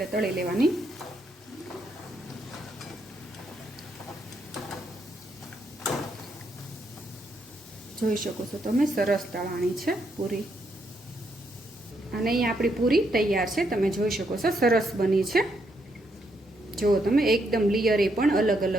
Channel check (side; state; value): both; normal; correlation 0.77